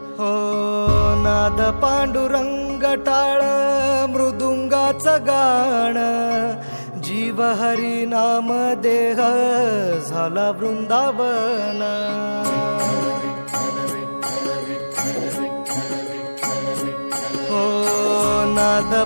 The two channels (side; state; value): both; inverted; correlation -1.00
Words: हो नाद पांडुरंग टाळ मृदुंगाचं गाण जीव हरी नाम देह झाला वृंदावन हो नाद